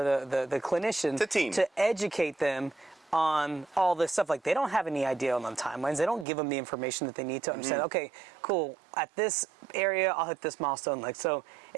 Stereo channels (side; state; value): left; drops out; at 6.2 s